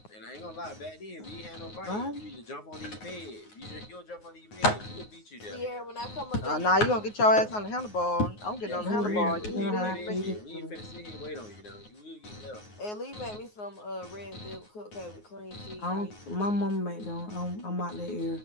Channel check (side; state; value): right; late; 9.5 ms